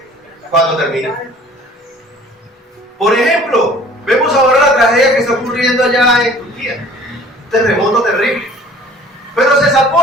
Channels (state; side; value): normal; both; correlation 0.50